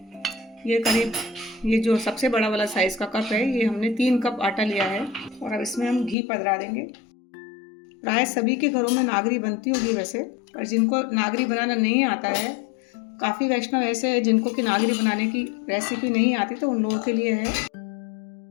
ये करीब ये जो सबसे बड़ा वाला साइज़ का कप है, ये हमने 3 कप आटा लिया है। और अब इसमें हम घी पधरा देंगे। प्राय सभी के घरों में नागरी बनती होगी वैसे, और जिनको नागरी बनाना नहीं आता है, काफ़ी वैष्णव ऐसे हैं जिनको कि नागरी बनाने की रेसिपी नहीं आती, तो उन लोगों के लिए है।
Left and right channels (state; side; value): drops out; right; at 6.2 s